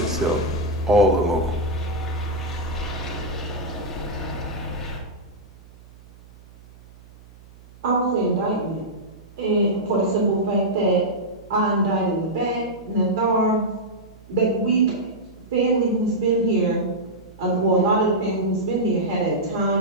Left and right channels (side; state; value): right; noise; hum, 23 dB below the sound